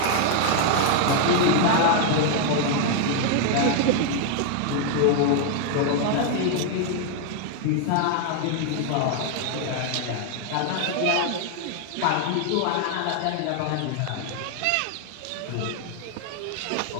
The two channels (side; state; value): both; different; correlation 0.00